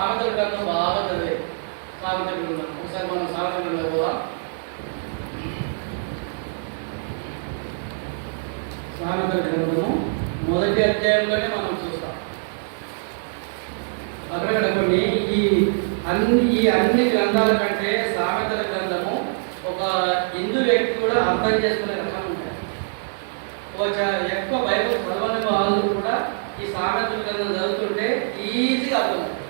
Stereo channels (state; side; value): silent; left; 62 dB below the other